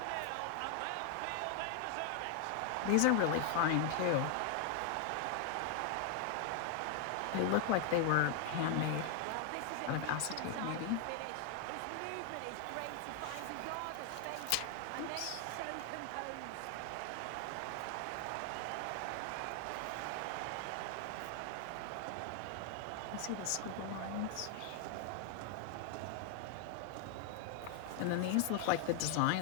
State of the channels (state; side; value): different; both; correlation 0.00